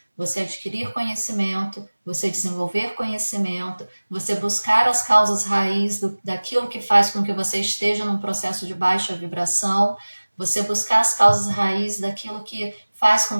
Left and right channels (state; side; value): inverted; both; correlation -1.00